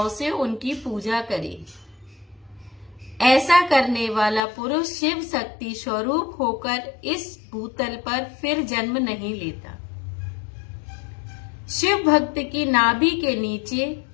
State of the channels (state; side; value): drops out; right; at 4.4 s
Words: से उनकी पूजा करे। ऐसा करने वाला पुरुष शिव शक्ति स्वरूप होकर इस भूतल पर फिर जन्म नहीं लेता। शिव भक्त की नाभि के नीचे